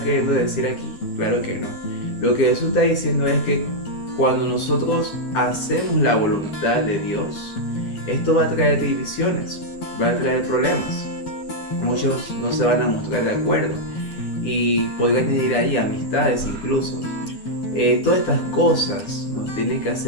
queriendo decir aquí? Claro que no. Lo que Jesús está diciendo es que cuando nosotros hacemos la voluntad de Dios, esto va a traer divisiones, va a traer problemas. Muchos no se van a mostrar de acuerdo y podría añadir ahí amistades incluso. Todas estas cosas nos tienen que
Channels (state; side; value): late; right; 10 ms